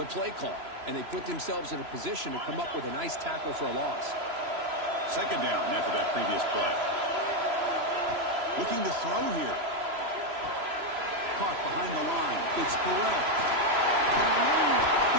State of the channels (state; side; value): late; left; 3.0 ms